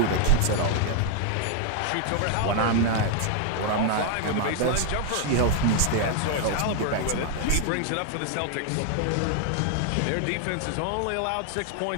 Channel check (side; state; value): both; different; correlation 0.00